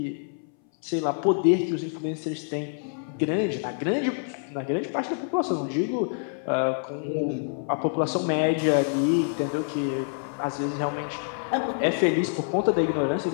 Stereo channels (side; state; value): right; silent; 59 dB below the other